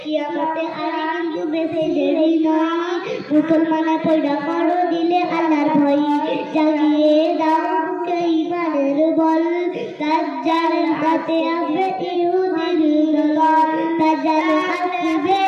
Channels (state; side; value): identical; both; correlation 1.00